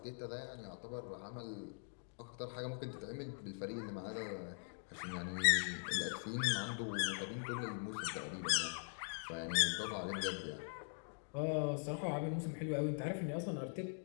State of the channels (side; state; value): right; silent; digital silence